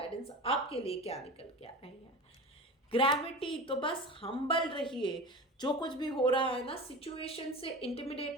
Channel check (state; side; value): normal; both; correlation 0.31